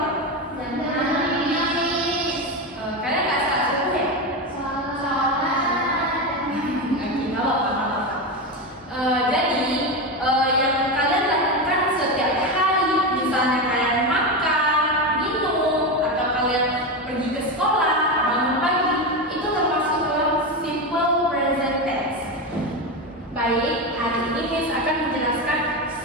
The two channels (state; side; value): normal; both; correlation 0.16